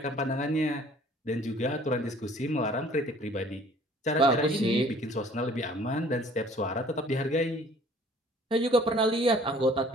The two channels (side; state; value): both; normal; correlation 0.53